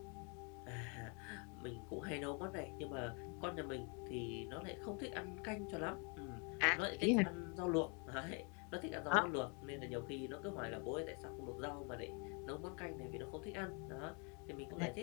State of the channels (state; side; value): quieter; right; 35.2 dB